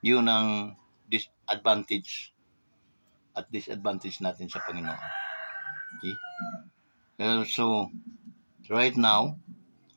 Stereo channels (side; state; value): both; inverted; correlation -1.00